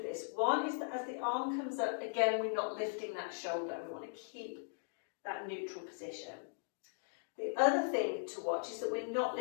this. One is that as the arm comes up, again, we're not lifting that shoulder. We want to keep that neutral position. The other thing to watch is that we're not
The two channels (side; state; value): right; silent; digital silence